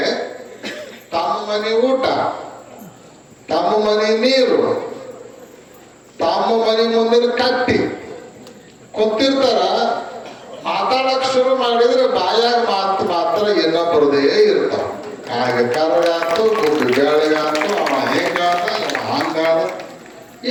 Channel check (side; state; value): both; identical; correlation 1.00